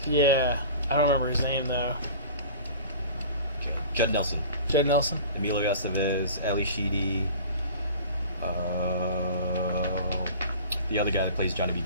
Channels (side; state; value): both; inverted; correlation -0.41